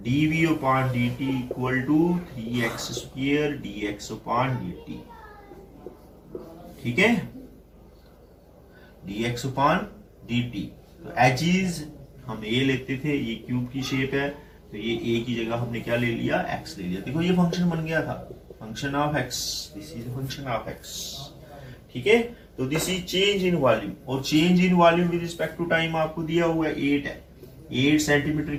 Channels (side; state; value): both; identical; correlation 1.00